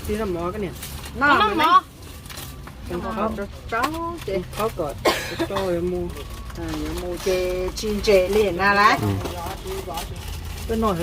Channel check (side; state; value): both; identical; correlation 1.00